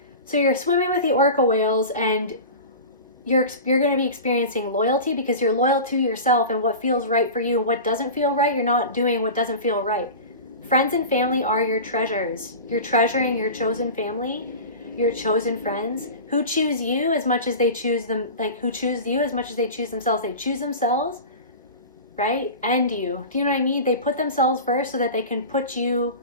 So you're swimming with the orca whales, and you're going to be experiencing loyalty because you're loyal to yourself and what feels right for you. And what doesn't feel right, you're not doing what doesn't feel right. Friends and family are your treasures. You're treasuring your chosen family, your chosen friends, who choose you as much as they choose them, like who choose you as much as they choose themselves. They choose themselves, right? And you. Do you know what I mean? They put themselves first so that they can put you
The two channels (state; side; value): inverted; both; correlation -0.32